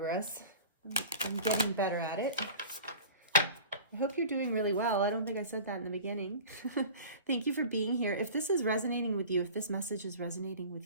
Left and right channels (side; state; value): both; inverted; correlation -0.40